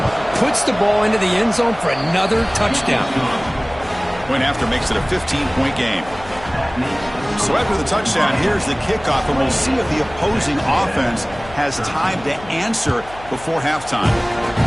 puts the ball into the end zone for another touchdown. Point after makes it a 15-point game. So after the touchdown, here's the kickoff, and we'll see if the opposing offense has time to answer before halftime.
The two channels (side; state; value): left; noise; hum, 18 dB below the sound